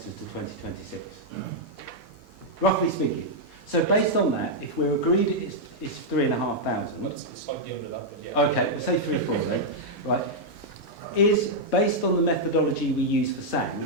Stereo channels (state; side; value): normal; both; correlation -0.04